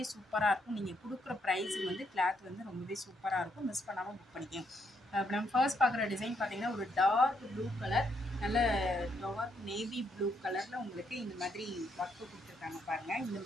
சூப்பராக இருக்கும். நீங்கள் கொடுக்குற ப்ரைஸுக்கு வந்து கிளாத் வந்து ரொம்பவே சூப்பராக இருக்கும். மிஸ் பண்ணாமல் புக் பண்ணிக்கங்க. இப்போ நம்ம ஃபர்ஸ்ட் பார்க்குற டிசைன் பார்த்தீங்கன்னா ஒரு டார்க் ப்ளூ கலர், நல்ல டார்க் நேவி ப்ளூ கலரில் உங்களுக்கு இந்த மாதிரி ஒர்க்கு கொடுத்துருக்காங்க பாருங்கள். இந்த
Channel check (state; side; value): normal; both; correlation 0.75